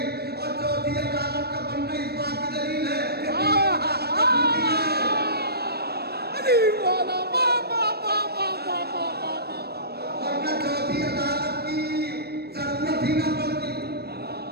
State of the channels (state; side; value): late; left; 0.47 ms